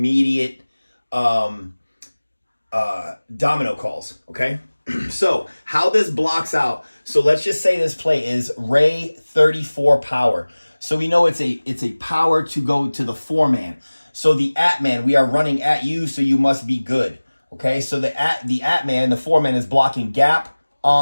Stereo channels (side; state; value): both; inverted; correlation -1.00